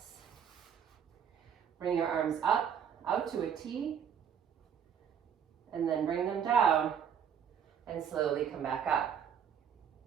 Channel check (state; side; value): quieter; left; 8.2 dB